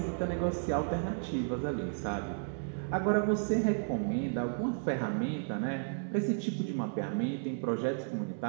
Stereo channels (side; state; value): left; silent; 56 dB below the other